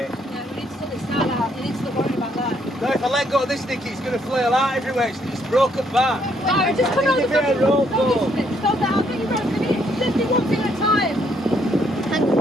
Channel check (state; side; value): normal; both; correlation 0.70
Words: Yeah, we need to sort this out. We need to stop worrying about that. No, if I let go of this, Nicky, it's going to flail out everywhere. It's broken back. No, just come on Give the me a bit of rope, Stop though. this, stop that. I'll get you rope. Just do one thing at a time. Hang on,